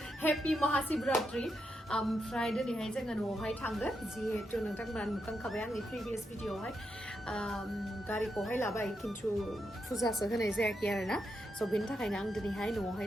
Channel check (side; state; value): both; normal; correlation 0.84